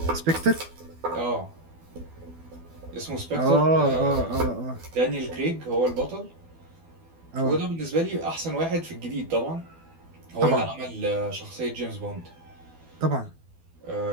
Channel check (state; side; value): late; left; 12 ms